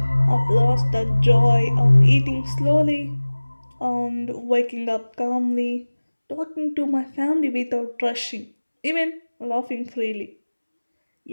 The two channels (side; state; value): both; inverted; correlation -1.00